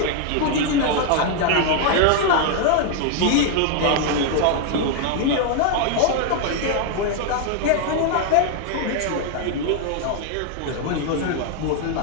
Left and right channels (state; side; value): different; both; correlation 0.00